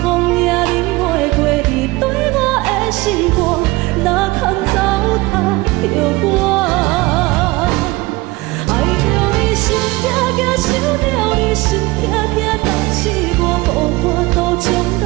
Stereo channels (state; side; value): quieter; left; 21.6 dB